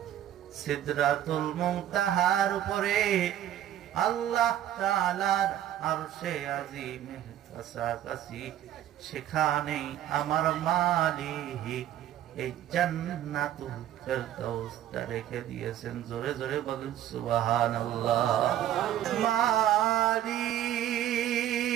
সিদরাতুল মুনতাহার উপরে, আল্লাহ তাআলার আরশে আজিমের কাছাকাছি, সেখানেই আমার মালিক এই জান্নাতুল ফেরদাউসটা রেখে দিয়েছেন। জোরে জোরে বলেন সুবহানাল্লাহ। মালিক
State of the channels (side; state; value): left; quieter; 11.8 dB